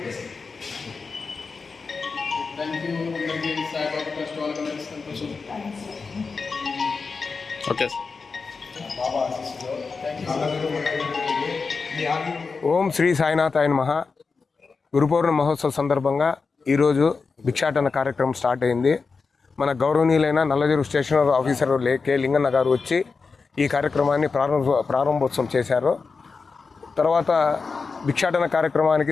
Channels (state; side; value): quieter; right; 4.7 dB